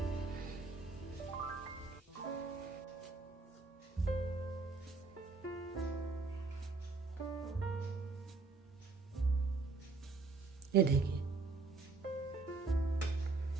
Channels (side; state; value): left; quieter; 3.9 dB